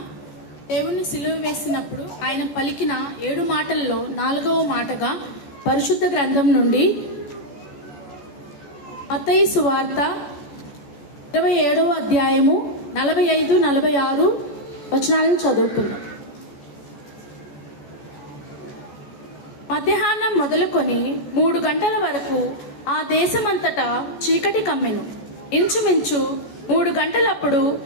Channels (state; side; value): late; right; 14 ms